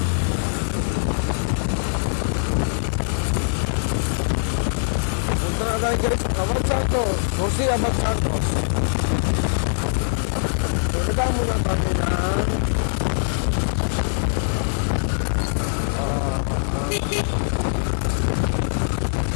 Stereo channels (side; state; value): right; silent; 64 dB below the other